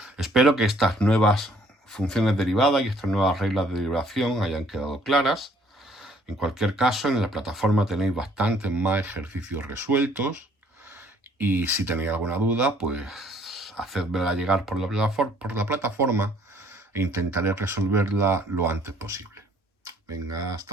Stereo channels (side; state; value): both; normal; correlation 0.61